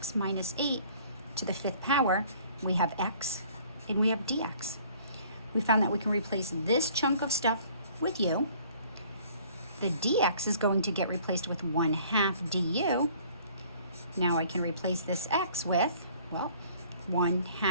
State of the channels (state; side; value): inverted; both; correlation -0.55